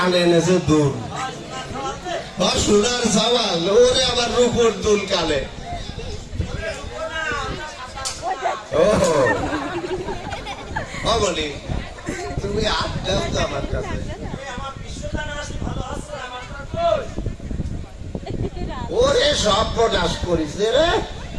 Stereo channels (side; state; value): both; identical; correlation 1.00